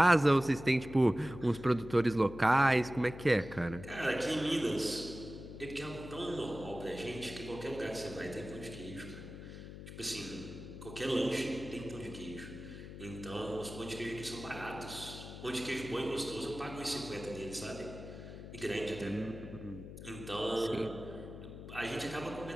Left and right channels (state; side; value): noise; left; hum, 12 dB below the sound